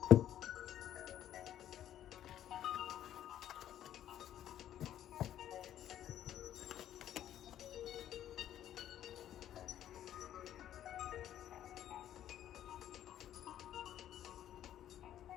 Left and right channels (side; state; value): right; quieter; 11.4 dB